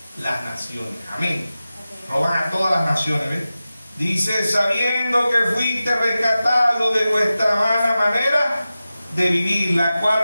las naciones. Amén. Roban a todas las naciones, ¿ves? Dice: sabiendo que fuiste rescatado de vuestra mala manera de vivir, la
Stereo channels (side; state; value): both; inverted; correlation -0.94